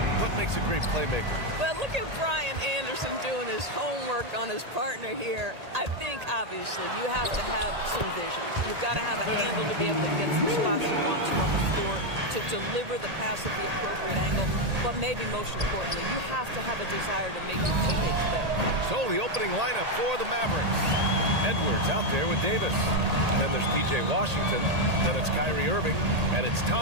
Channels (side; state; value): left; late; 1.8 ms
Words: What makes a great playmaker? Well, look at Brian Anderson doing his homework on his partner here. I think, obviously, you have to have some vision. You've got to have a handle to be able to get some spots you want to on the floor, to deliver the pass at the appropriate angle. But maybe most importantly, you have to have a desire to make your teammates better. So, the opening lineup for the Mavericks. Edwards out there with Davis. Then there's P.J. Washington. Then it's Kyrie Irving. And it's